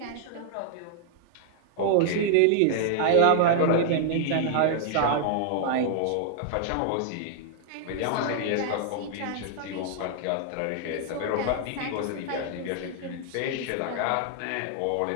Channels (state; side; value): different; both; correlation -0.01